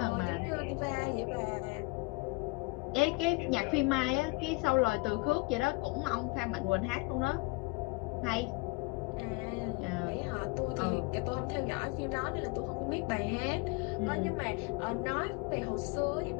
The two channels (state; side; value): quieter; right; 27.1 dB